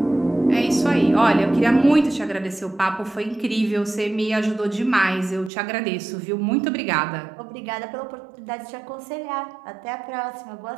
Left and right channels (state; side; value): drops out; left; at 5.5 s